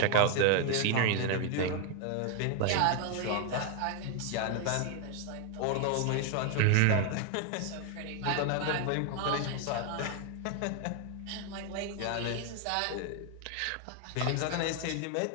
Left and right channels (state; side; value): different; both; correlation 0.01